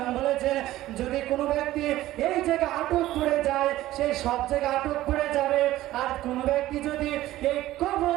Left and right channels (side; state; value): left; quieter; 15.4 dB